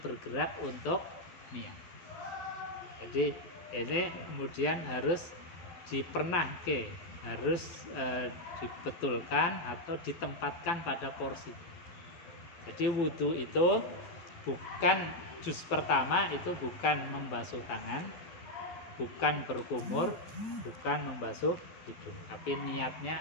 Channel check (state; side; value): late; right; 12 ms